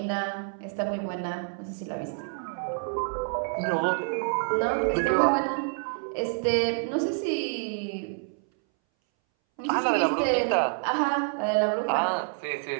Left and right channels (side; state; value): left; silent; 60 dB below the other